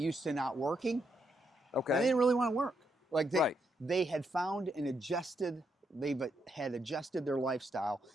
to not working. Okay. And they didn't really want to work. Like they had found and adjusted. They've had adjusted their lifestyle,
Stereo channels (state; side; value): normal; both; correlation 0.79